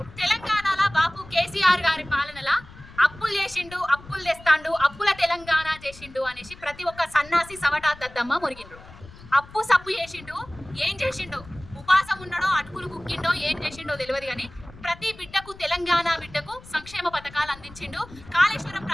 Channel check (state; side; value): noise; left; rumble, 19 dB below the sound